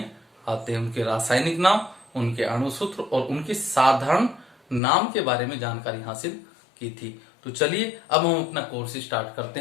आते हैं। उनके रासायनिक नाम, उनके अणुसूत्र और उनके साधारण नाम के बारे में जानकारी हासिल की थी। तो चलिए अब हम अपना कोर्स स्टार्ट करते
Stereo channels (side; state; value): right; drops out; at 4.8 s